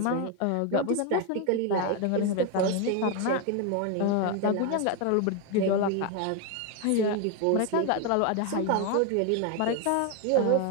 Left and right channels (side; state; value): both; different; correlation 0.01